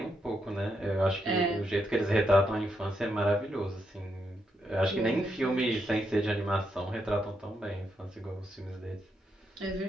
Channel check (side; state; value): both; normal; correlation 0.81